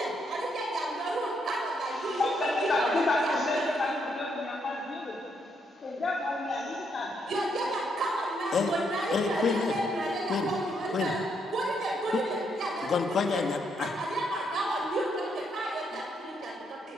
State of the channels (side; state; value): both; normal; correlation 0.75